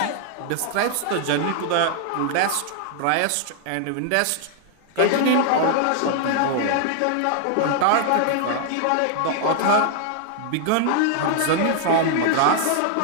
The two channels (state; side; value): different; both; correlation 0.00